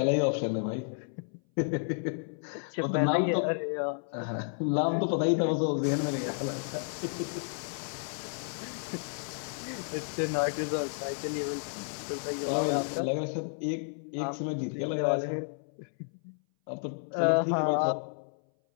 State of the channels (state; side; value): silent; right; 57 dB below the other